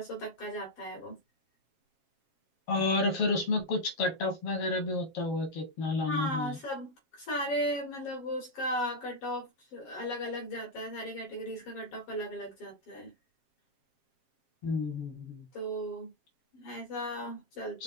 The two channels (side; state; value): right; late; 7.4 ms